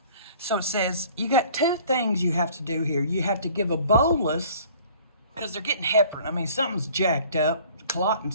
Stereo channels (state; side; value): inverted; both; correlation -0.51